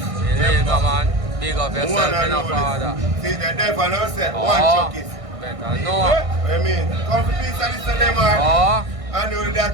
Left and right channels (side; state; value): left; late; 1.6 ms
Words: Illegal man. Big up yourself in a father. See the devil now said Oh, one Truckist. better know. I mean, come for peace and listen to them man. Oh, I know